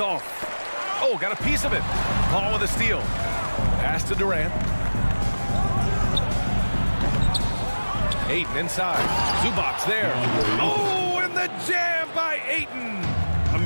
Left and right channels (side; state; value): both; inverted; correlation -1.00